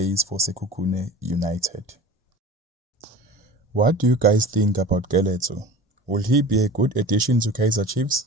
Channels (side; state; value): both; normal; correlation 0.38